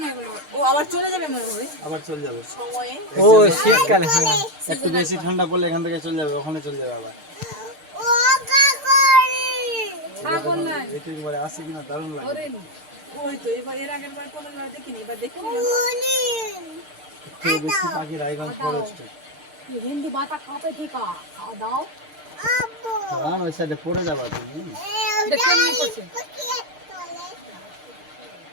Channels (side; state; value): left; late; 6.6 ms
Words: না এগুলো, ও আবার চলে যাবে মনে হয় আবার চলে যাবে সময়ে। ও শীতকাল, হ্যাঁ একটু বেশি ঠান্ডা পড়লে এখান থেকে চলে যাবে, ওখানে চলে যাবে আবার। ছাগল নাই এটা একবারে আসে কিনা দারুণ লাগে। হরিণ ওই তো এবার এর আগের বার কোনোবার দেখিনি, এবার দেখি একটু বেশি পাখি রায়গঞ্জ ফরেস্টে। হিন্দি বাতা কাপে ঠিকা দাও কারণ ওই সাইডে পড়ে যাবা তুমি। কেমনি করছে